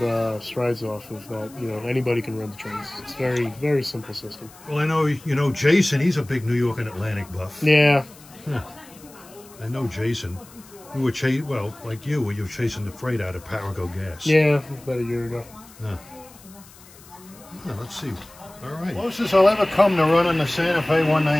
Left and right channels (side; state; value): left; noise; hiss, 23 dB below the sound